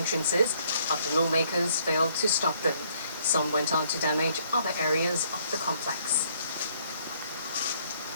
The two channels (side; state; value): both; inverted; correlation -0.66